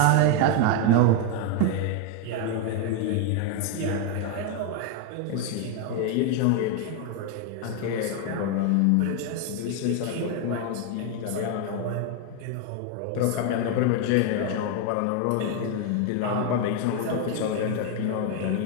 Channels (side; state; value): both; different; correlation 0.01